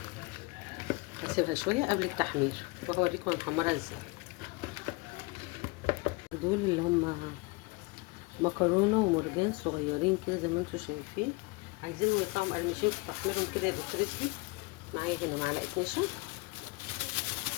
هسيبها شويه قبل التحمير وهوريكم هنحمرها ازاي. دول اللي هم مكرونه ومرجان صغيرين كده زي ما انتم شايفين، عايزينهم يطلعوا مقرمشين في تحميرهم كده يبقوا كريسبي. معايا هنا معلقه نشا،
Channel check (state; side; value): quieter; right; 25.3 dB